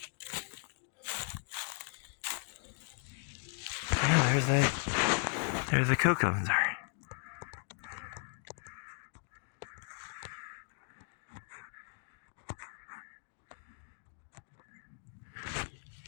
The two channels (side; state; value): right; silent; 53 dB below the other